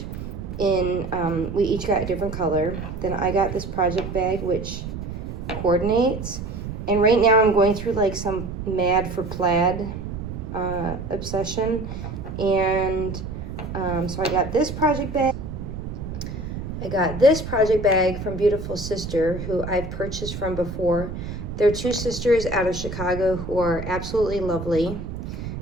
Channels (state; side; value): noise; right; rumble, 7 dB below the sound